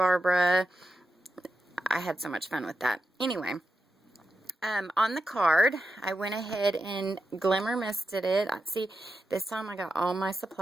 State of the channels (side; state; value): both; normal; correlation 0.88